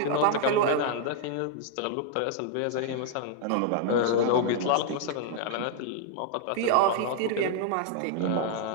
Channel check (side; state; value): both; different; correlation -0.01